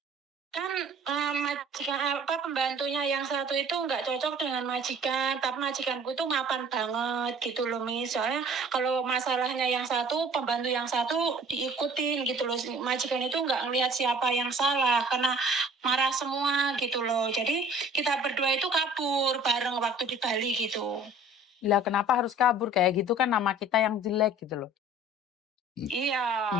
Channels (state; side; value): normal; both; correlation 0.49